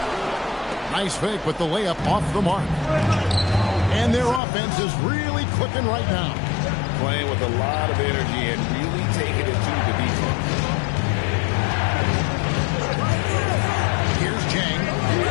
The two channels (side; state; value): right; drops out; at 4.4 s